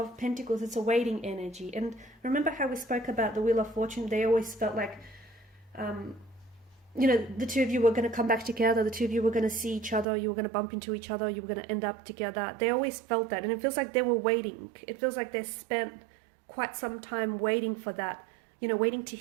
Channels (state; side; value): drops out; left; at 10.1 s